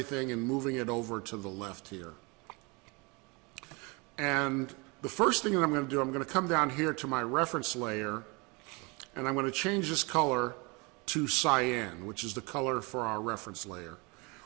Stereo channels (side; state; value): left; quieter; 28.3 dB